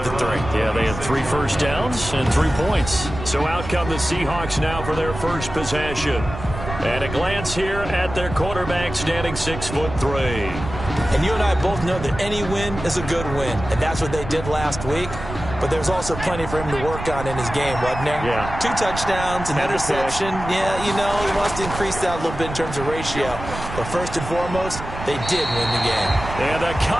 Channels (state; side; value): noise; right; rumble, 9 dB below the sound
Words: the 3. Yeah, they had 3 first downs and 3 points. So out come the Seahawks now for their first possession. And a glance here at their quarterback standing 6'3". And you and I both know that any win is a good win, and that's what they did last week. But there's also plenty for him to work on in his game, wasn't there? Yeah. 2 touchdowns, an interception. Yeah, you know, he wants to increase that a little bit in terms of ratio. But first and foremost, they did win the game. And the